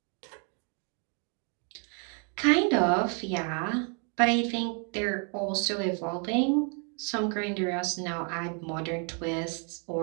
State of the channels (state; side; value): quieter; left; 39.2 dB